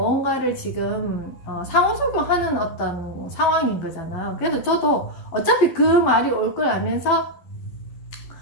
지금 상호작용하는 어떤 상황인 거잖아요. 그래서 저도 어차피 그 말이 올 걸 알면서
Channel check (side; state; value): right; late; 11 ms